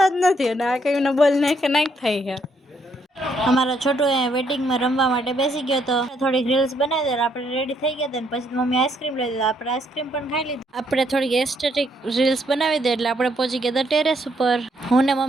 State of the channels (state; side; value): normal; both; correlation 0.72